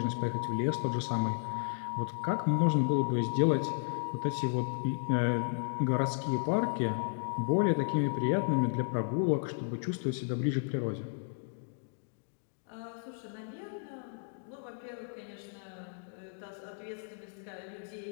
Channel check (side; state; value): right; silent; digital silence